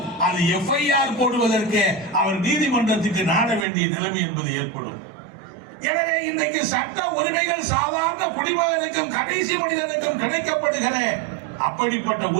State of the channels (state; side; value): drops out; left; at 3.7 s